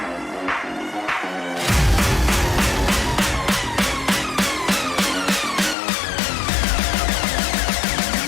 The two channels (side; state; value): right; drops out; at 5.8 s